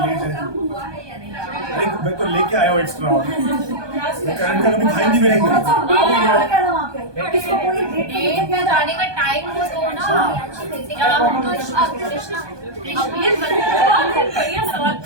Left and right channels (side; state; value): left; late; 1.2 ms